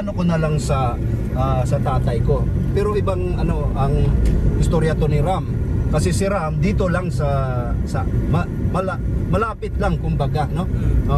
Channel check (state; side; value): identical; both; correlation 1.00